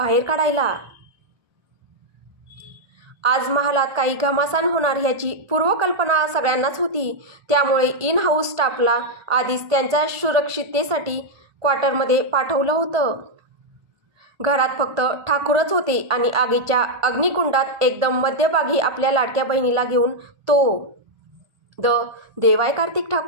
काढायला. आज महालात काही घमासान होणार ह्याची पूर्वकल्पना सगळ्यांनाच होती. त्यामुळे इन हाऊस स्टाफला आधीच त्यांच्या सुरक्षिततेसाठी क्वार्टरमध्ये पाठवलं होतं. घरात फक्त ठाकूरच होते आणि आगीच्या अग्निकुंडात एकदम मध्यभागी आपल्या लाडक्या बहिणीला घेऊन तो देवाय कार्तिक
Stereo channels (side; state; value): left; late; 1.5 ms